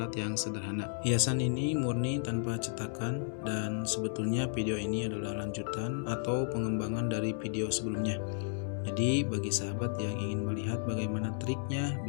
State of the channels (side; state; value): right; silent; digital silence